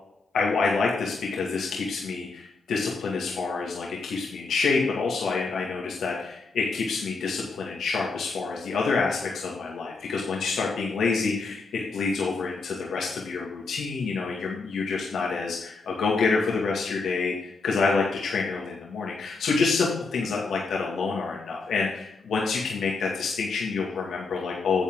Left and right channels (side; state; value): right; quieter; 4.1 dB